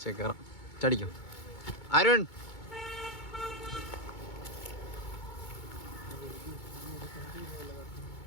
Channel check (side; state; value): right; late; 2.2 ms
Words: കയറാം. ചടിക്കും. അരുൺ